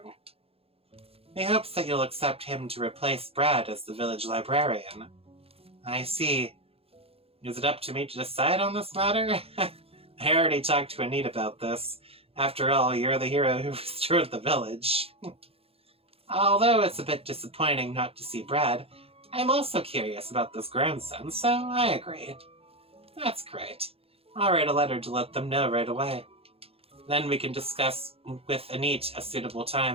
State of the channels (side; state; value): left; late; 0.28 ms